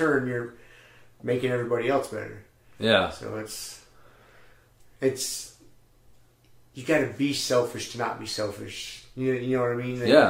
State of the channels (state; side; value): identical; both; correlation 1.00